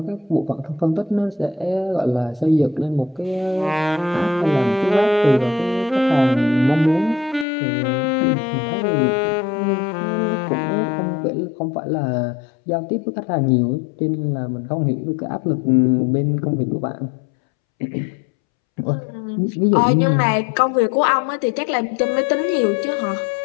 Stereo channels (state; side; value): drops out; right; at 7.5 s